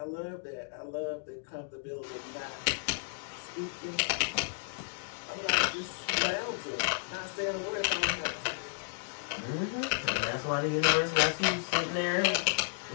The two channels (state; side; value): silent; right; digital silence